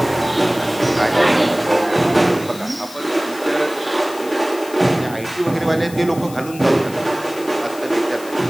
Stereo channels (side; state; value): left; noise; hiss, 17 dB below the sound